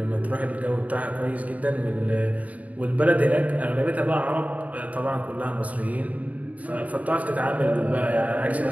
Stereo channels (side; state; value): left; late; 0.071 ms